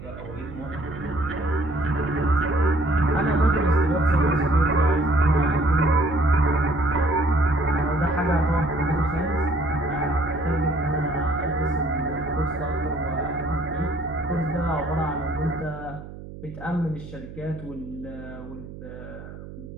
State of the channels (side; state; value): right; noise; hum, 14 dB below the sound